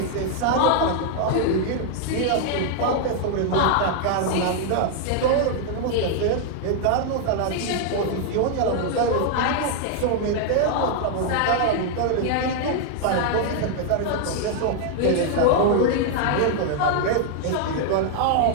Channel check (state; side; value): different; both; correlation 0.00